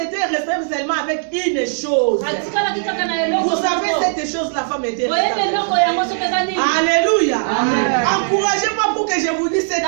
seulement avec une chose. Vous savez, cette chose, la femme était restée. Alléluia. Encouragez-moi pour que je vous dise cette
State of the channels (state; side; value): silent; left; digital silence